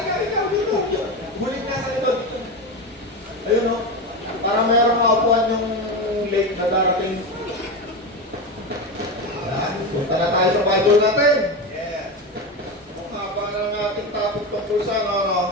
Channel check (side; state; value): both; normal; correlation 0.19